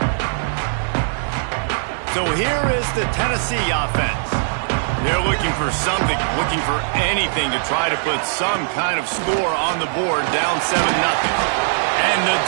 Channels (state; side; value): silent; left; digital silence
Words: So here is the Tennessee offense. They're looking for something, looking for anything to try to put some kind of score on the board, down 7-0. And the